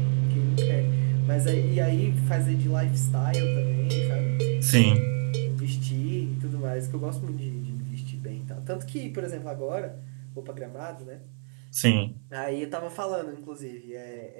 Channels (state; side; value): silent; left; digital silence